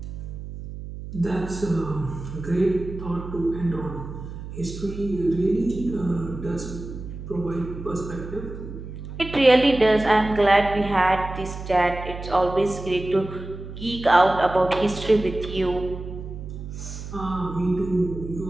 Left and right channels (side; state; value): right; noise; hum, 10 dB below the sound